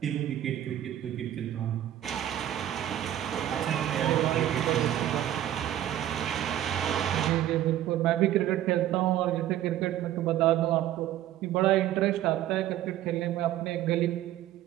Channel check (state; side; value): quieter; left; 12.5 dB